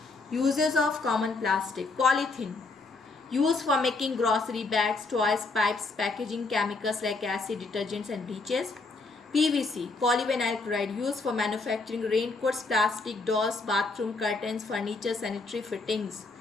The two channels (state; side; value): quieter; right; 3.7 dB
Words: Uses of common plastic. Polythene, used for making grocery bags, toys, pipes, packaging, chemicals like acid, detergents and bleaches. PVC, polyvinyl chloride, used for manufacturing raincoats, plastic dolls, bathroom curtains, furniture, sanitary fittings.